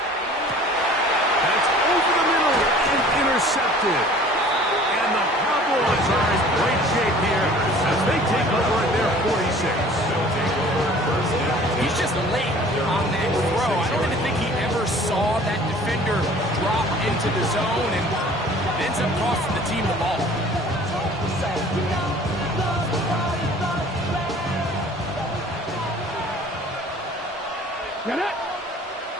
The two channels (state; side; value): normal; both; correlation 0.49